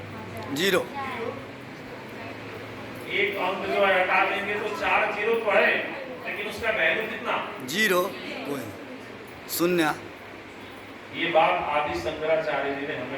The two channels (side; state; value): both; identical; correlation 1.00